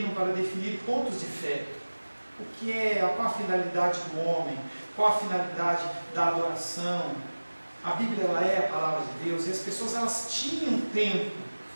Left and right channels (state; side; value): inverted; both; correlation -1.00